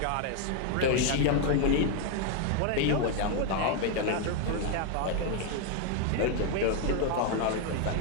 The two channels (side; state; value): both; different; correlation 0.01